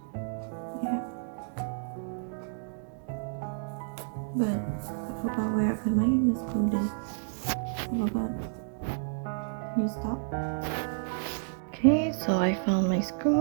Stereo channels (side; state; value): left; silent; digital silence